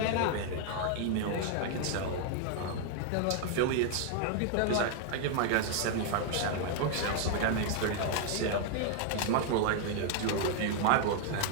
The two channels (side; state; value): both; different; correlation 0.00